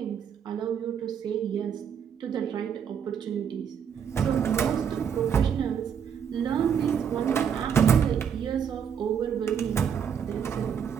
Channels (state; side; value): quieter; left; 7.8 dB